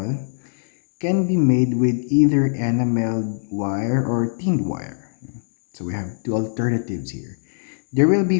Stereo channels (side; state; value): right; silent; 64 dB below the other